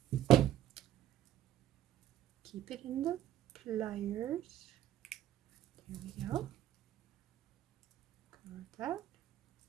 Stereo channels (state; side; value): quieter; left; 12.2 dB